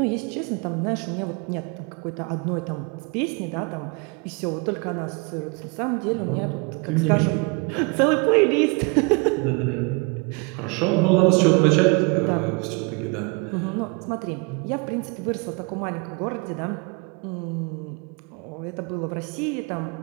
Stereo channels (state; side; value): quieter; left; 30.6 dB